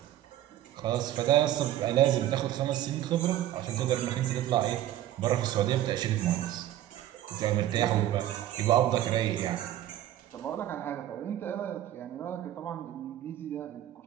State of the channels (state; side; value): quieter; left; 12.9 dB